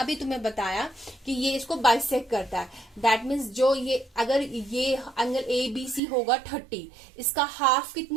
तुम्हें बताया कि ये इसको बाइसेक्ट करता है। दैट मीन्स जो ये अगर ये एंगल ABC होगा 30, इसका हाफ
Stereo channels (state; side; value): drops out; left; at 6.0 s